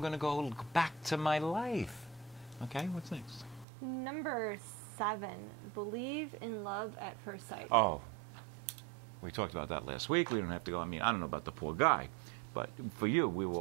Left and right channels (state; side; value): drops out; left; at 3.7 s